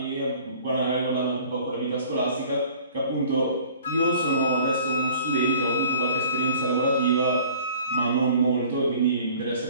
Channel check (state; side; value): inverted; both; correlation -0.50